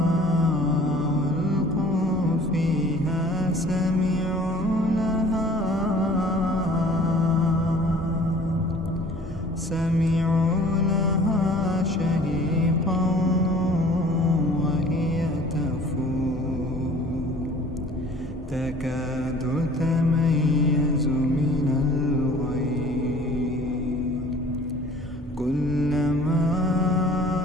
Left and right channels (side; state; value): both; normal; correlation 0.50